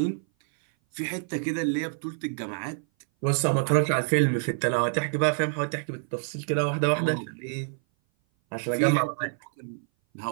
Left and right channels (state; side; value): silent; left; 57 dB below the other